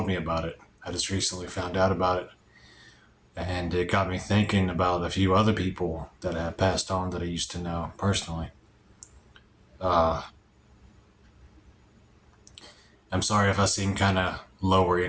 me about it. I just recently found out about it, and it got me thinking about a few other people that have passed on that I used to know personally. I'm sorry if I seem kind of lower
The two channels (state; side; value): identical; both; correlation 1.00